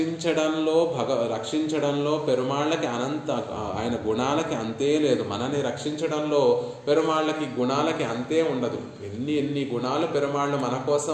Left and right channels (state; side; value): identical; both; correlation 1.00